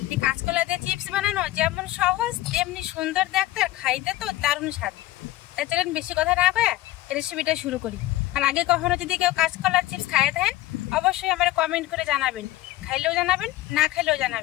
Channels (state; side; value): quieter; right; 16.2 dB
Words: কাঁচকলা দিয়ে চিপস বানানো যেমন সহজ তেমনি সুন্দর দেখতে, আর খাইতে তো দারুণ স্বাদ। তাই চলেন বেশি কথা না কয়ে রেসিপিটা শুরু করি। আর আগে কখনো যদি কেউ কাঁচকলার চিপস খাইয়ে থাকেন অবশ্যই আমার কমেন্ট করে জানাবেন, খাইলেও জানাবেন, না খাইলেও